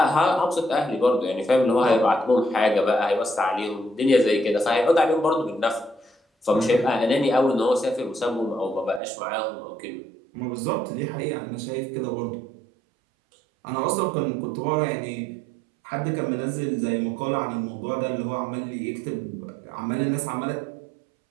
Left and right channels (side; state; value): left; drops out; at 9.0 s